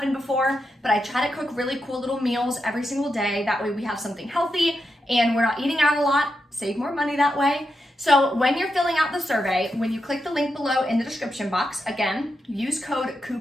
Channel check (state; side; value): normal; both; correlation 0.86